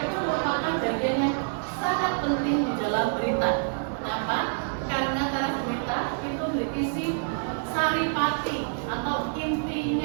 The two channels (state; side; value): silent; left; digital silence